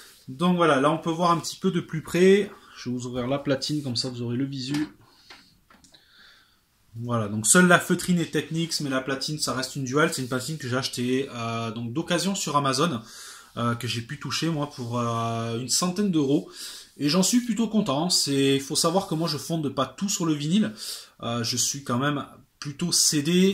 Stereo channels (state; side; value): identical; both; correlation 1.00